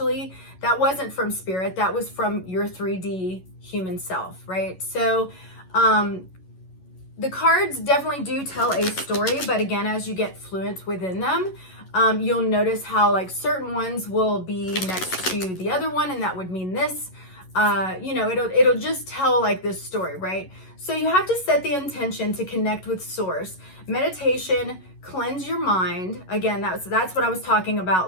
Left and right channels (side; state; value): right; late; 11 ms